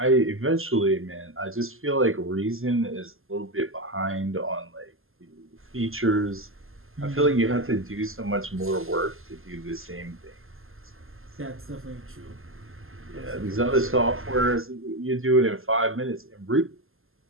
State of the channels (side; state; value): left; late; 0.61 ms